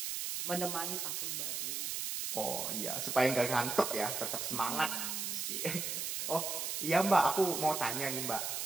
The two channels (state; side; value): noise; right; hiss, 2 dB below the sound